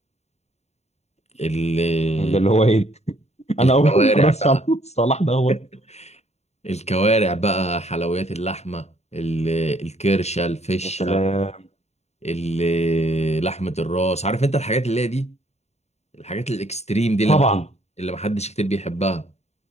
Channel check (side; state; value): right; late; 0.32 ms